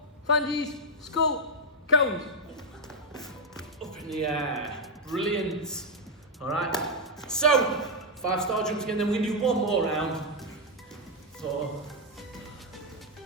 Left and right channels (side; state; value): both; normal; correlation 0.01